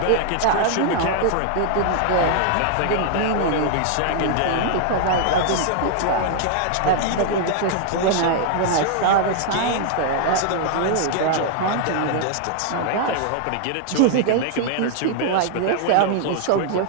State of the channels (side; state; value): both; different; correlation 0.00